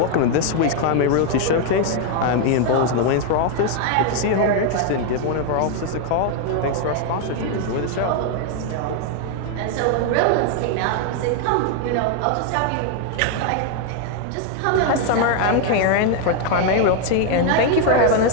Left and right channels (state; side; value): different; both; correlation 0.00